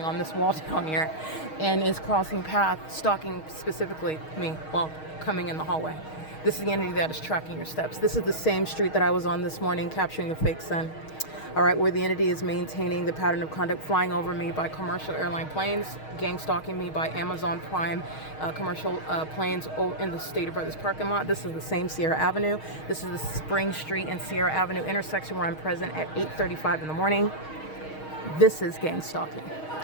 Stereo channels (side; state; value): right; late; 6.4 ms